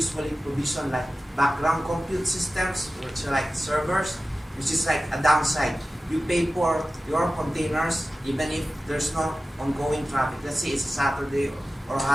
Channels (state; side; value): normal; both; correlation 0.95